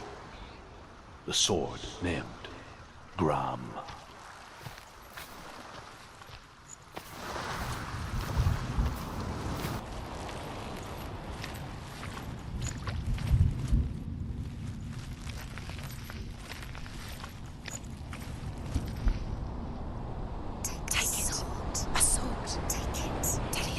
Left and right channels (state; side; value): identical; both; correlation 1.00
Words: The sword named Gram.